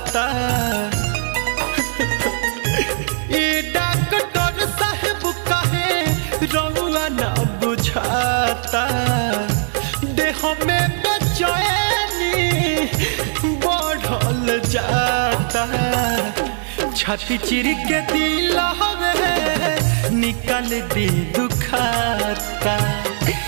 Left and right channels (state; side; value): silent; left; digital silence